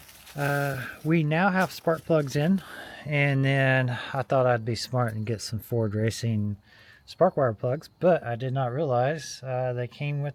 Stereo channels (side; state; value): both; identical; correlation 1.00